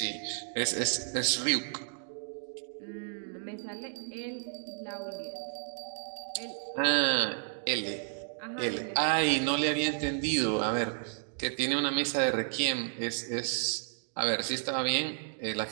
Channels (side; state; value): left; silent; digital silence